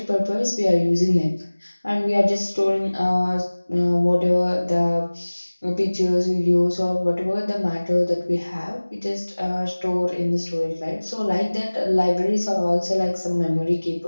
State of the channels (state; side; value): inverted; both; correlation -1.00